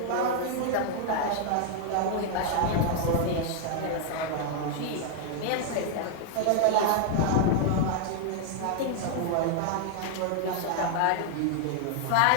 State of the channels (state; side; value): different; both; correlation 0.00